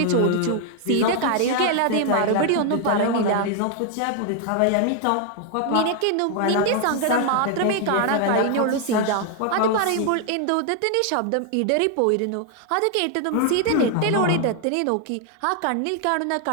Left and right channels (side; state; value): both; different; correlation 0.00